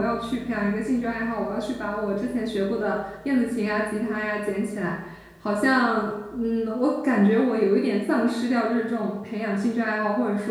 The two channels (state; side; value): identical; both; correlation 1.00